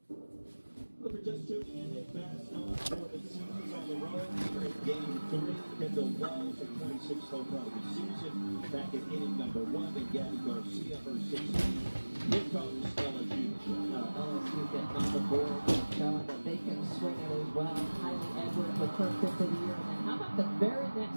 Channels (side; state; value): both; inverted; correlation -1.00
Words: Well, for just tuning in, Nick Bascom for the Sooners on the road here at Game 3. Kendall Wells, her 26th home run of the season, back at inning number 1, and Gabby Garcia, her 16th. Here comes LSU. LSU getting on the board, showing that they can swing it as well. Kylie Edwards with her 5th of the year. And then how about the very